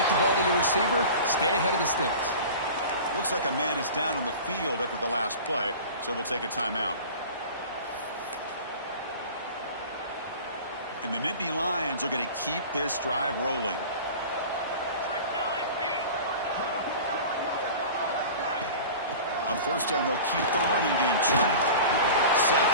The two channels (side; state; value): both; inverted; correlation -0.37